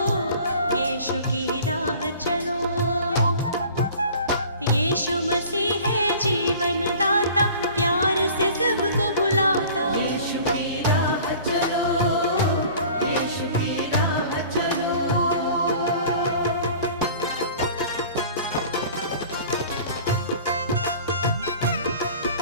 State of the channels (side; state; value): both; inverted; correlation -0.45